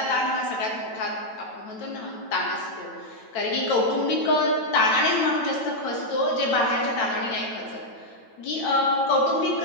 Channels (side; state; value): right; late; 9.0 ms